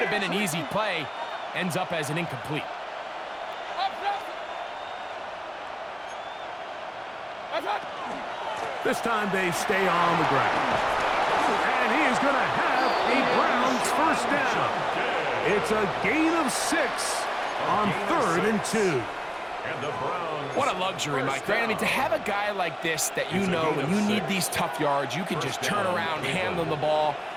have been an easy play ends up as an incomplete. This time they stay on the ground. And he is going to have a Browns 1st down. It's a gain of 6 on 3rd and 2. And the Browns. What a luxury, Mike, right? I mean, to have a guy like this that you know when you need these tough yards, you can just turn around, handle the ball,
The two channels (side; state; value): both; identical; correlation 1.00